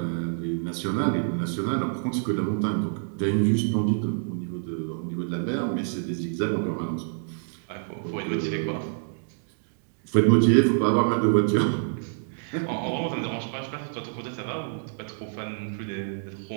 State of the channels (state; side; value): silent; left; digital silence